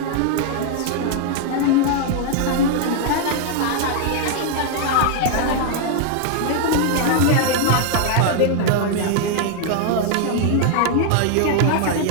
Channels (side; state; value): both; different; correlation 0.00